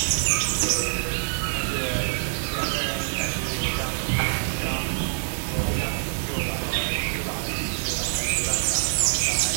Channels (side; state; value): left; silent; digital silence